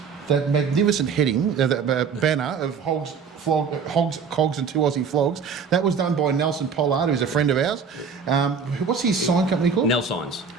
heading, that banner of Hogs, Cogs and 2 Aussie Flogs. That was done by Nelson Pollard, who's a friend of ours. What's his sign company called? Nelsigns.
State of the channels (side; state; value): left; quieter; 5.9 dB